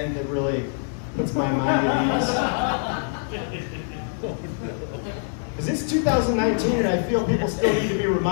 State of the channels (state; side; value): silent; right; 62 dB below the other